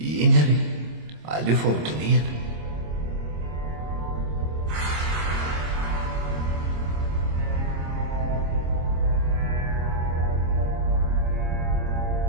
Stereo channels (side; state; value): left; late; 26 ms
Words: eny ary aleo fa hodinihana